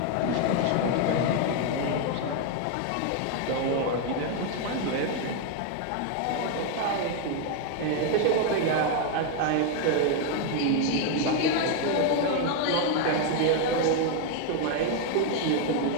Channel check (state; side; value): different; both; correlation 0.01